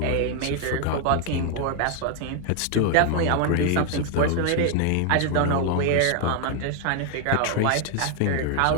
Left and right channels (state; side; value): different; both; correlation 0.00